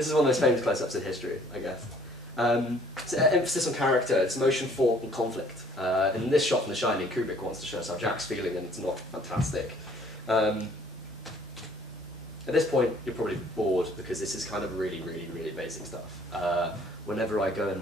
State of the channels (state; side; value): normal; both; correlation 0.58